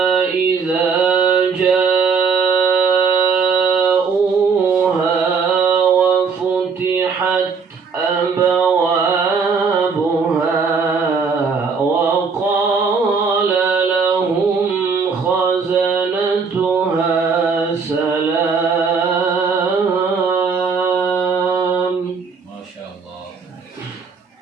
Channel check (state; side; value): quieter; left; 5.3 dB